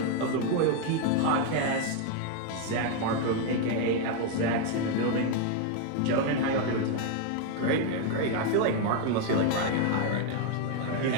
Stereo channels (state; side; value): different; both; correlation 0.01